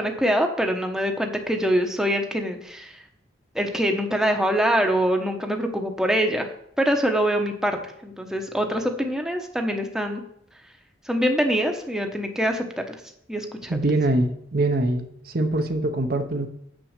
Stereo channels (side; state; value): both; normal; correlation 0.74